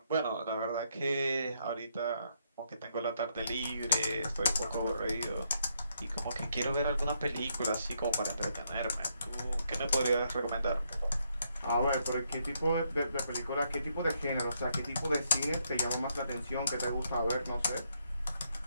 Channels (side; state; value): both; inverted; correlation -0.76